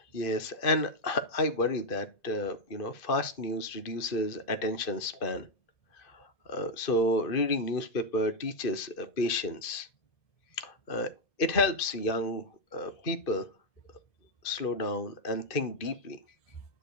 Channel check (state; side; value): late; right; 2.5 ms